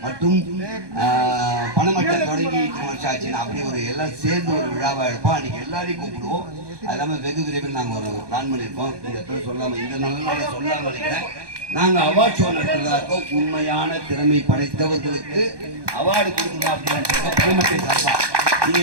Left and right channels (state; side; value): late; left; 1.2 ms